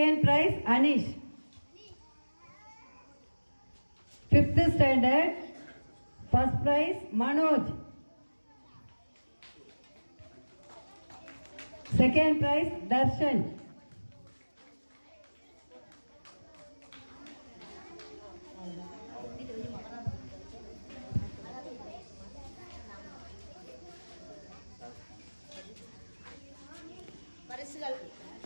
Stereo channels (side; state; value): both; inverted; correlation -1.00